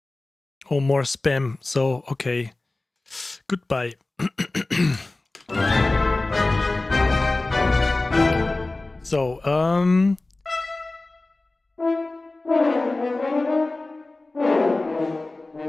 Oh, more spam. So, okay. Goodbye. So,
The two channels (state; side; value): quieter; right; 3.0 dB